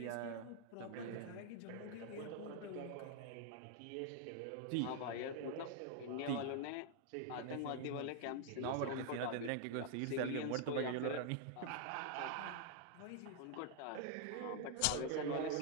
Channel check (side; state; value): both; different; correlation 0.00